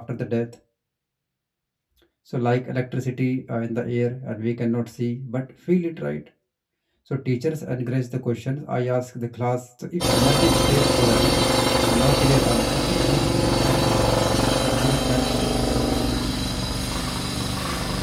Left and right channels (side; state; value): both; identical; correlation 1.00